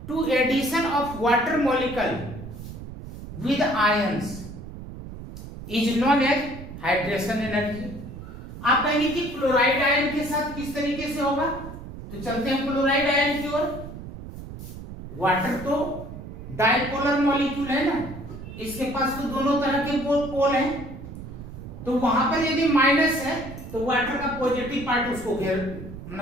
to addition of water molecule with ions is known as hydration energy. आप कहेंगे कि chloride ion के साथ किस तरीके से होगा? तो चलते हैं क्लोराइड आयन की ओर। वाटर तो डाइपोलर मॉलिक्यूल है ना, इसके पास तो दोनों तरह के पोल हैं। तो वहां पर यदि माइनस है तो वाटर का पॉजिटिव पार्ट उसको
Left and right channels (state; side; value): noise; right; rumble, 12 dB below the sound